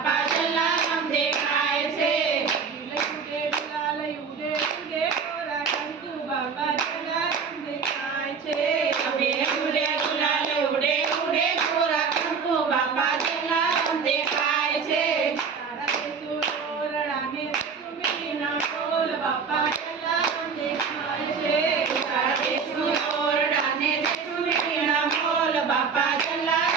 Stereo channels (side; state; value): left; quieter; 5.8 dB